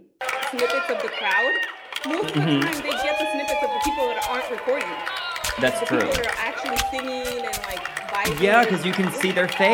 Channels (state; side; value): identical; both; correlation 1.00